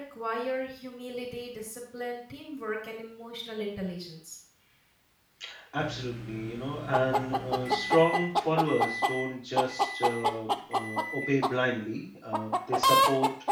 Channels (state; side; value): identical; both; correlation 1.00